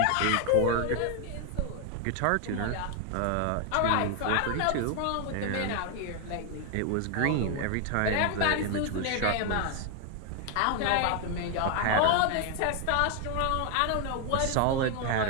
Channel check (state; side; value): different; both; correlation 0.01